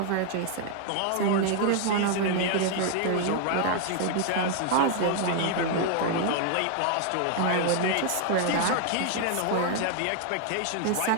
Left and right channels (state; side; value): different; both; correlation 0.00